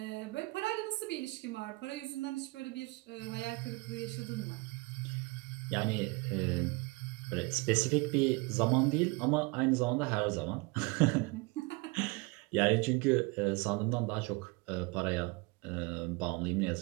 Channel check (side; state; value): left; quieter; 26.2 dB